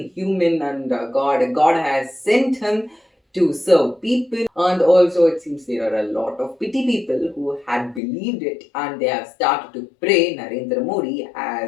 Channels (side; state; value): right; drops out; at 8.0 s